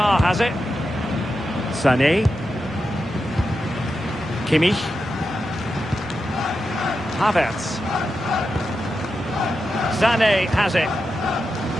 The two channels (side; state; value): both; normal; correlation 0.89